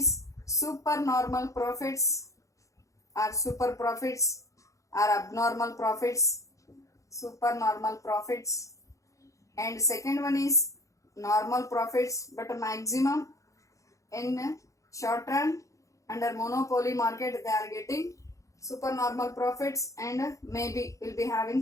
supernormal profits or super profits or abnormal profits, supernormal profits, and second one is normal profits but maximum in short run under monopoly market they are getting supernormal profits and maybe will be having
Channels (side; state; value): right; late; 0.15 ms